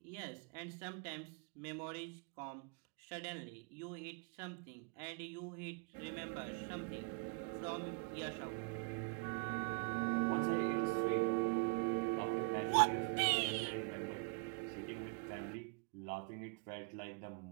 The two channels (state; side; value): quieter; left; 34.6 dB